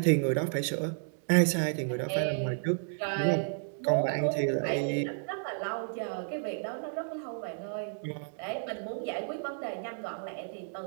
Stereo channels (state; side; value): silent; left; digital silence